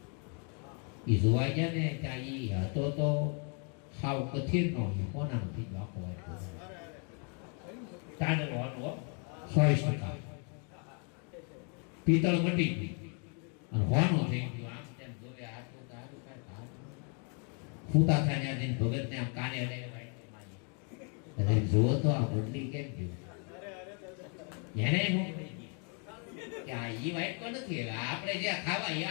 એ જોવા ગયા ને ત્યાં એ હતો તો સાવ કથિર નો કોના નથી આખો વાઇટકો ચાંદલો 100% પિત્તળ મટી ગઈ અને હોનું થઈ ગયું. આમ તેમ જોવે આટલું તો આટલું કઈ ફૂતા થાય ત્યાં ભગત ને આમ કાને લઈને વાઇટકો મારી જોવો તો આ બદલી કેમ ગયું એને કે આ ઈ વાઇટકો નથી, આપણે જે ખાવા એ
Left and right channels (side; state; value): right; quieter; 38.4 dB